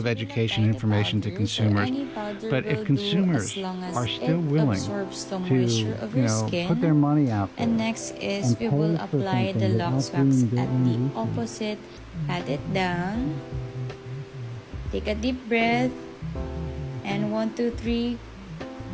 education and information to consumers. But if consumers are still willing to put their money out there, and next is we will apply the Lux Wax at the opposite. Pat it down. Take a deep breath. And 1, 2, 3.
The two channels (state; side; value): identical; both; correlation 1.00